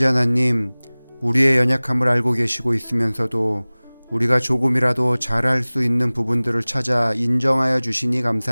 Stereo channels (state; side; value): inverted; both; correlation -1.00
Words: 하나님, 우리의 연약함을 알고 계시고 있으면서도 우리가 조금이라도 잘할 수 있는 부분들을 찾아 인정하여 주시니